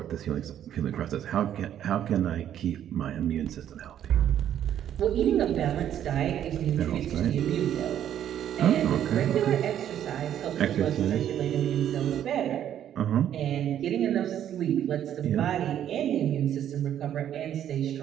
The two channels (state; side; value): quieter; left; 10.5 dB